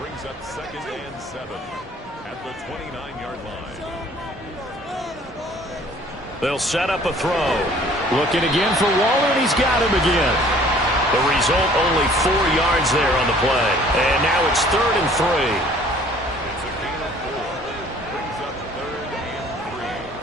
up 2nd and 7 at the 29-yard line. They'll set up a throw. Looking again for Waller, and he's got him again. The result, only 4 yards there on the play. And now it's 3rd and 3. It's a gain of 4. Brings up 3rd and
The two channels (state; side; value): normal; both; correlation 0.54